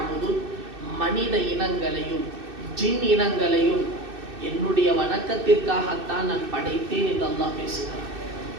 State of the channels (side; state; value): left; late; 2.6 ms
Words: மனித இனங்களையும் ஜின் இனங்களையும் என்னுடைய வணக்கத்திற்காகத்தான் நான் படைத்தேன் என்று அல்லாஹ் பேசுகிறான்.